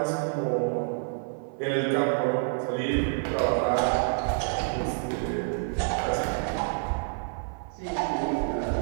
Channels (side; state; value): left; silent; 59 dB below the other